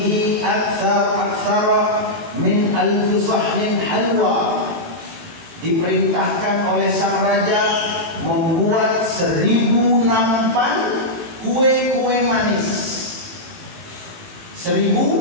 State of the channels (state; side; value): late; left; 18 ms